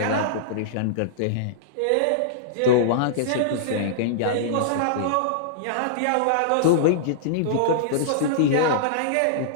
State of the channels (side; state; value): both; different; correlation -0.02